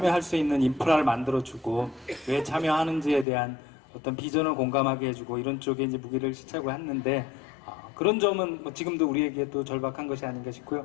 수 있는 인프라를 만들어주고 왜 참여하는지에 대한 어떤 비전을 공감하게 해주고 이런 쪽에 이제 무기를 시착을 했는데 그런 점은 뭐 지금도 우리에게 또 절박한 것이 아닌가 싶고요.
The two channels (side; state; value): right; drops out; at 3.2 s